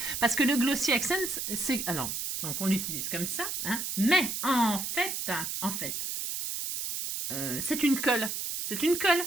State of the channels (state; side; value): noise; right; hiss, 3 dB below the sound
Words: Parce que le Glossy Accent, c'est... Alors, donc on l'utilise comme ça, hein, mais en fait... c'est une colle. C'est une colle.